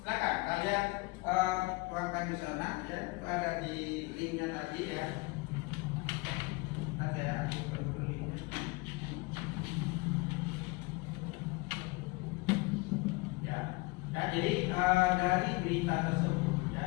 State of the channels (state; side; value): quieter; right; 24.8 dB